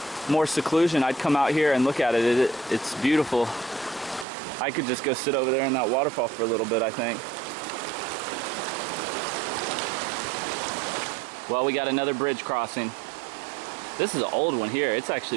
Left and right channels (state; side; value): drops out; left; at 4.2 s